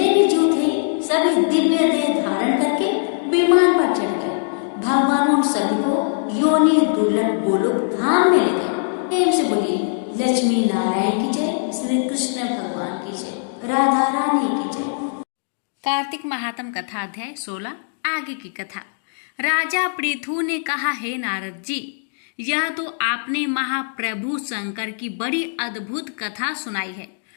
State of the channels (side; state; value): right; silent; digital silence